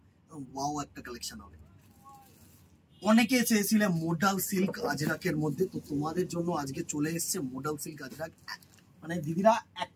ওয়াও একটা কালেকশন হবে। অনেকে চেয়েছিলে মোডাল সিল্ক আজরাকের মধ্যে, তো তোমাদের জন্য আজকে চলে এসেছে মোডাল সিল্ক আজরাক। মানে দিদিরা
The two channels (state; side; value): identical; both; correlation 1.00